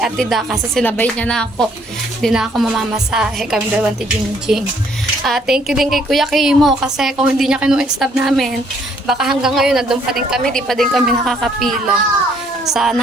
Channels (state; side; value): normal; both; correlation 0.65